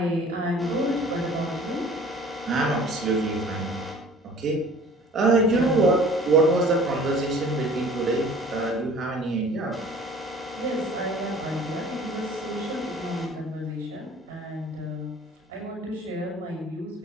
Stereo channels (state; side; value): normal; both; correlation 0.49